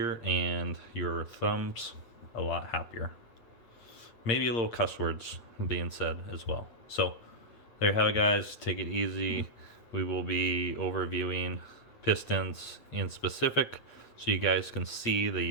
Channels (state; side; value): late; right; 8.7 ms